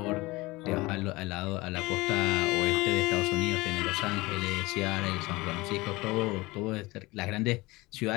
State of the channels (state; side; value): quieter; right; 21.6 dB